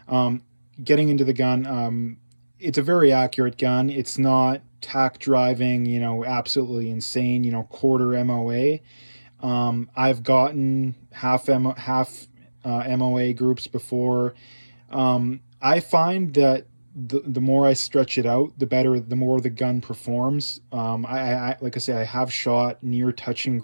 Getting into the gun, it's a very accurate gun. It's not tack driving, absolutely insane, quarter MOA. I've gotten half MOA groups before. I find that the more I stretch it out, the more the gun performs. Like I say, I have shot near touching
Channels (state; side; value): inverted; both; correlation -1.00